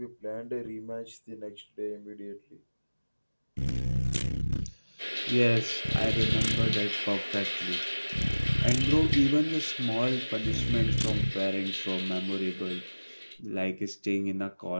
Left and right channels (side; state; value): both; inverted; correlation -1.00